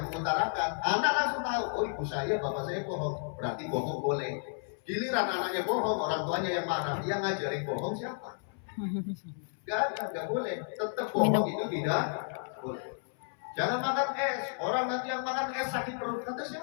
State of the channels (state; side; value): silent; right; 56 dB below the other